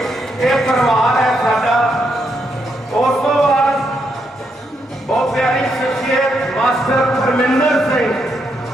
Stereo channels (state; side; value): normal; both; correlation 0.79